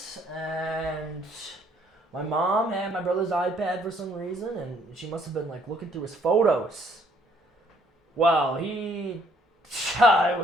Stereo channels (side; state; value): both; normal; correlation 0.64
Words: and my mom had my brother's iPad for some reason, and she must have been like looking through his photos. Wow, I